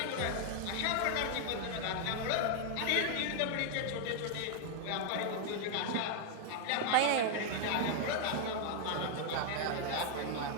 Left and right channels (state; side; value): different; both; correlation 0.00